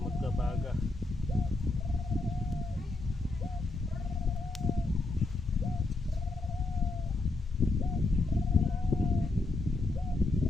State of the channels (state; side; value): quieter; right; 3.1 dB